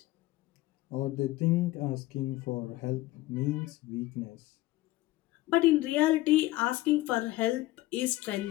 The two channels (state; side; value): quieter; right; 17.5 dB